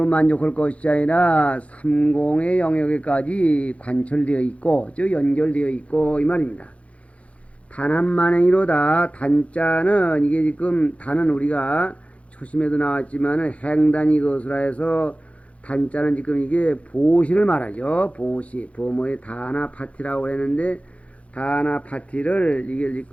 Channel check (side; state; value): right; late; 0.063 ms